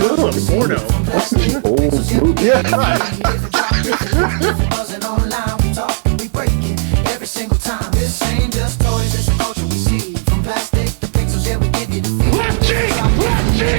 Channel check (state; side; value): silent; left; digital silence